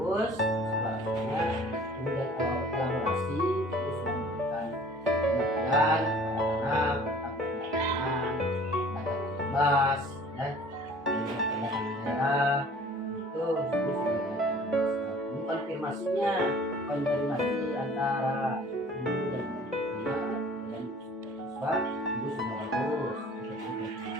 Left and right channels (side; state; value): both; normal; correlation 0.49